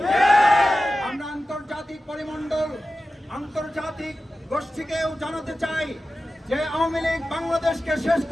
আমরা আন্তর্জাতিক পরিমণ্ডল, আন্তর্জাতিক গোষ্ঠীকেও জানাতে চাই যে আওয়ামী লীগ বাংলাদেশকে শেষ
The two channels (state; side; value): normal; both; correlation 0.94